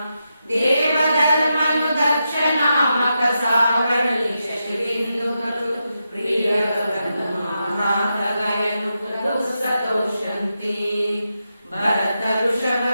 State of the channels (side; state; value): both; inverted; correlation -0.87